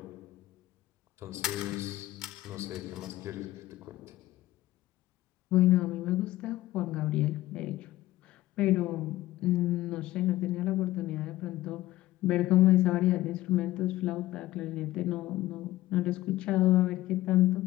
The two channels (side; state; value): right; quieter; 16.3 dB